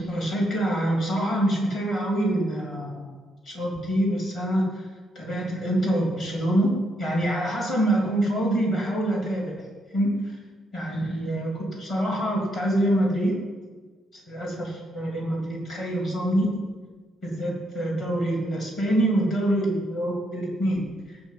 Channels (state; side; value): normal; both; correlation 0.77